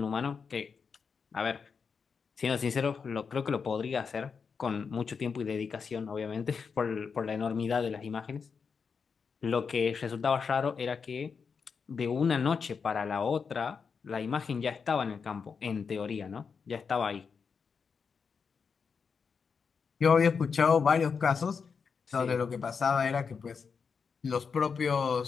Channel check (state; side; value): quieter; right; 5.8 dB